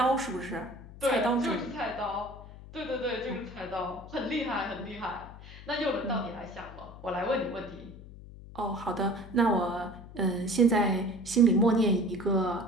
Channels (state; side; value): noise; left; hum, 16 dB below the sound